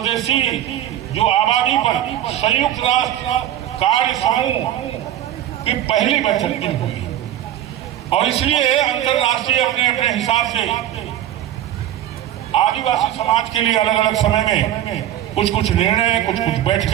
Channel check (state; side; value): quieter; left; 12.0 dB